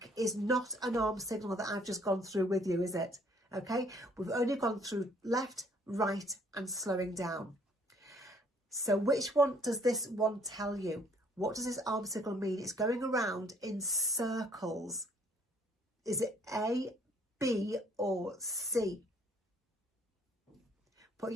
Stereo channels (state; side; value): normal; both; correlation 0.61